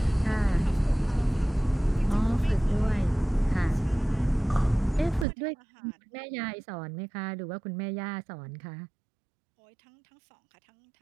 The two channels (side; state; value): left; drops out; at 5.2 s